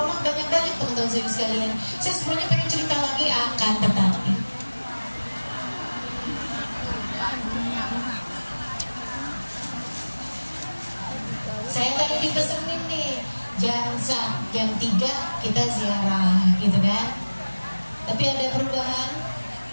banyak-banyak, teman-teman saya sekalian. Saya sebenarnya pengen cerita lagi, akan tetapi saya tadi dipesenin nih jam 3 kita ziarah gitu kan. Tapi ada perubahan.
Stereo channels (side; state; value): both; inverted; correlation -1.00